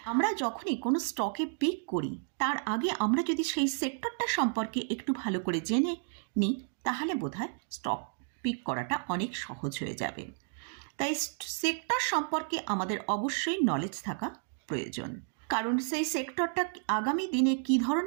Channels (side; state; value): left; silent; 56 dB below the other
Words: আমরা যখনই কোনো স্টকে পিক করি তার আগে আমরা যদি সেই সেক্টরটা সম্পর্কে একটু ভালো করে জেনে নিই তাহলে বোধহয় স্টক পিক করাটা অনেক সহজ হয়ে যাবে। তাই সেক্টর সম্পর্কে আমাদের অবশ্যই নলেজ থাকা প্রয়োজন, কারণ সেই সেক্টরটা আগামী দিনে কী